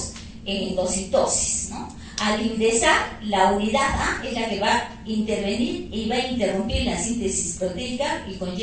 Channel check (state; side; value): identical; both; correlation 1.00